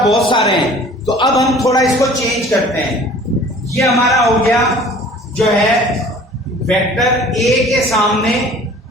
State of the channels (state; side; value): normal; both; correlation 0.48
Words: बहुत सारे हैं, तो अब हम थोड़ा इसको चेंज करते हैं। ये हमारा हो गया जो है वेक्टर ए के सामने,